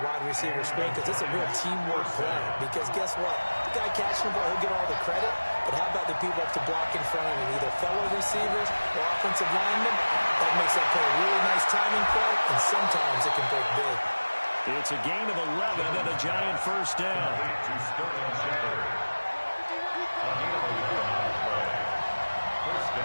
wide receiver screen because it's a real teamwork play. Because guess what? The guy catching the ball, he'll get all the credit. But how about the people up to block in front of him, either fellow receivers or offensive linemen? That makes that play a really nice timing play, and sometimes it can break big. It's a gain of 11 and a giant first down. To Sterling Shepard. A gain of 11 on the play. First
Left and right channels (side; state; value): both; inverted; correlation -1.00